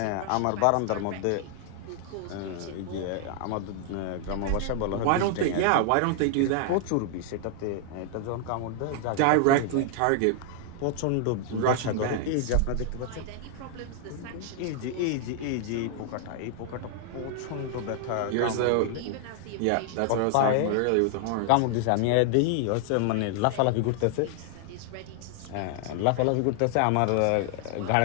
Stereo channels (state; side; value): different; both; correlation 0.00